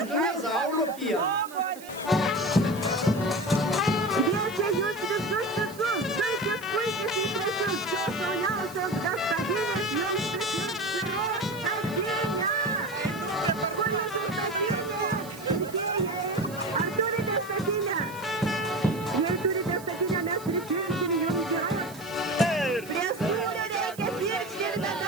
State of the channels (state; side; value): noise; right; hiss, 18 dB below the sound